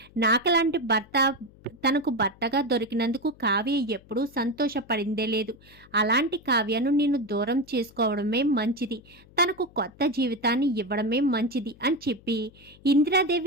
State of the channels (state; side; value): noise; left; hum, 25 dB below the sound